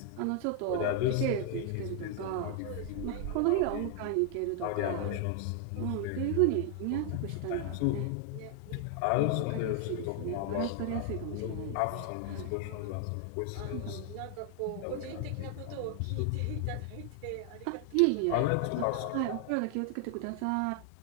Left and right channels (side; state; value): both; different; correlation 0.00